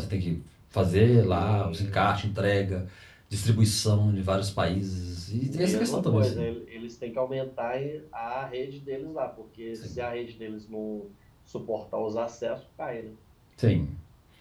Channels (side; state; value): both; identical; correlation 1.00